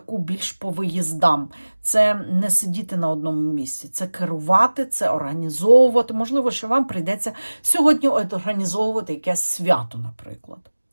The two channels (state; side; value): inverted; both; correlation -1.00